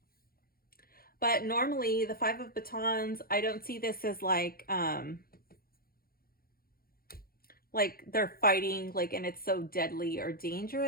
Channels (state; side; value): late; right; 0.43 ms